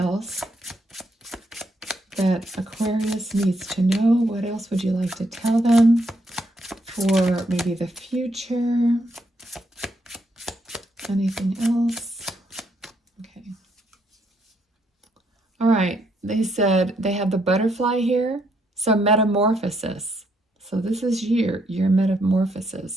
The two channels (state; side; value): normal; both; correlation 0.75